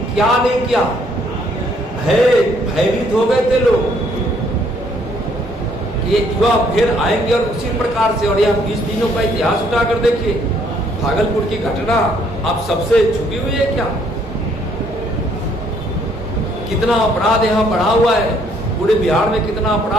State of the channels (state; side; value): normal; both; correlation 0.66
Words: क्या नहीं किया, भयभीत हो गए थे लोग कि ये युवा फिर आएंगे और उसी प्रकार से। और यह 20 दिनों का इतिहास उठाकर देखिए, भागलपुर की घटना आप सबसे छुपी हुई है क्या? कितना अपराध यहाँ बढ़ा हुआ है, पूरे बिहार में कितना